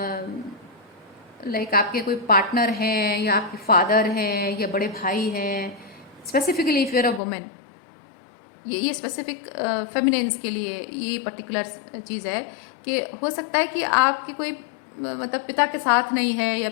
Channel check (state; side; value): drops out; right; at 7.2 s